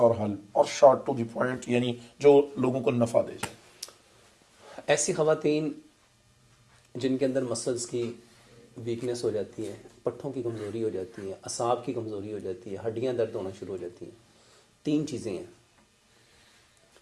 और हल और शॉर्ट टू द पॉइंट, यानी जो लोगों को नफ़ा दे जाए। ऐसी ख़वातीन जिनके अंदर मसल्स की वीकनेस हो जाती है, पट्ठों की कमज़ोरी हो जाती है, असाब की कमज़ोरी हो जाती है, हड्डियाँ दर्द होना शुरू हो जाती हैं, 3 चीज़ें हैं।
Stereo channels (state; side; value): identical; both; correlation 1.00